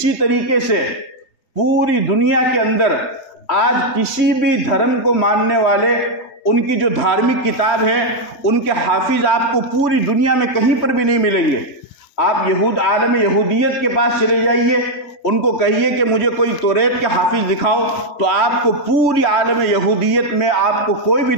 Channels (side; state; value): right; late; 3.2 ms